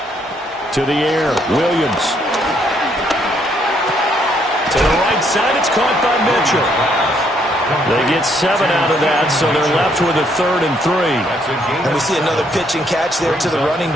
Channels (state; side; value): normal; both; correlation 0.70